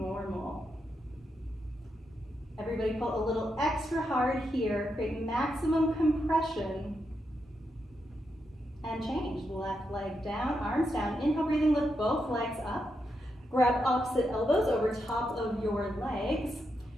Everybody pull a little extra hard here, create maximum compression, and change. Left leg down, arms down. Inhale, breathing, lift both legs up. Grab opposite elbows over top of your legs.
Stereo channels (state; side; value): normal; both; correlation 0.84